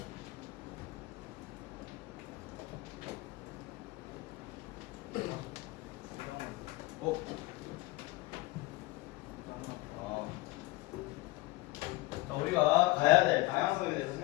어? 우리가 가야 될 방향성에 대해서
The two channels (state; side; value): quieter; right; 20.3 dB